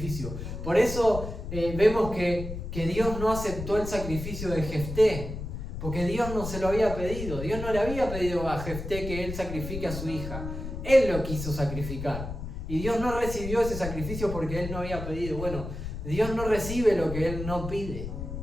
Por eso vemos que Dios no aceptó el sacrificio de Jefté. Porque Dios no se lo había pedido. Dios no le había pedido a Jefté que él sacrifique a su hija. Él lo quiso sacrificar. Y Dios no recibió ese sacrificio porque él no había pedido. Bueno, Dios no recibe lo que él no pide.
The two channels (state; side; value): noise; left; rumble, 7 dB below the sound